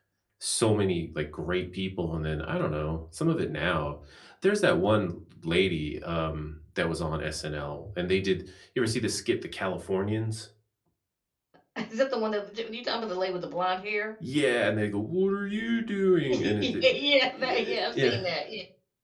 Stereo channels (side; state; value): both; identical; correlation 1.00